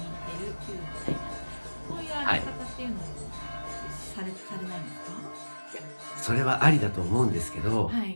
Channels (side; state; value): both; inverted; correlation -1.00